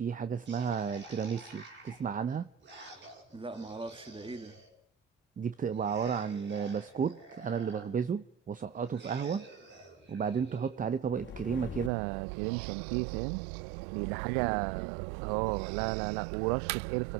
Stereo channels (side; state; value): left; drops out; at 11.9 s